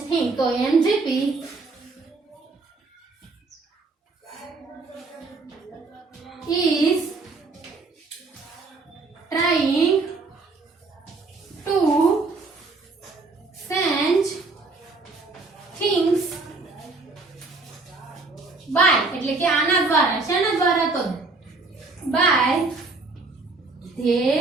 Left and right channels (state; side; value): quieter; left; 3.7 dB